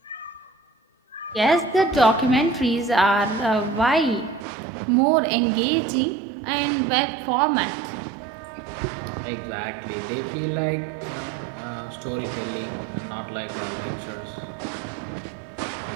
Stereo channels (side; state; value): left; drops out; at 4.5 s